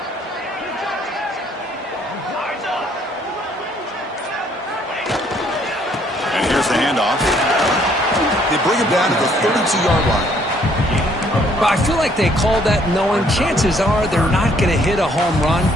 And here's the handoff. They bring him down to the 32-yard line. But I feel like they called that knowing chances are they're not going to hit a home run.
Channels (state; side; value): normal; both; correlation 0.65